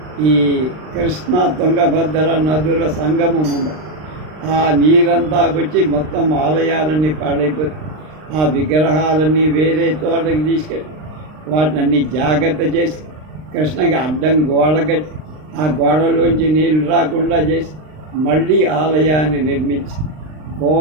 ఈ కృష్ణా తుంగభద్ర నదుల సంగమం ఉంది. ఆ నీరంతా వచ్చి మొత్తం ఆలయాలన్నీ పాడైపోతాయి. ఆ విగ్రహాలన్నీ వేరే చోటకి తీసుకెళ్ళి వాటిని అన్నీ జాగ్రత్త చేసి కృష్ణకి అడ్డం గోడ కట్టి ఆ గోడలోంచి నీళ్ళు రాకుండా చేసి మళ్ళీ ఆలయాన్ని నిర్మించి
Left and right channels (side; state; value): left; late; 39 ms